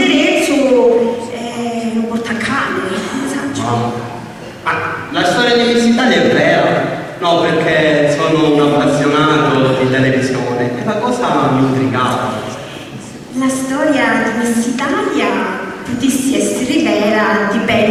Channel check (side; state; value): both; identical; correlation 1.00